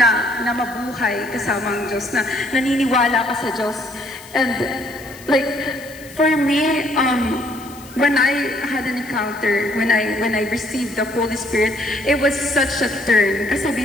mabuhay kasama ang Diyos, na naniniwala ka sa Diyos. And like, for me, when I had an encounter, when I received the Holy Spirit, it was such a turn. Kasi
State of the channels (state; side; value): noise; left; hiss, 20 dB below the sound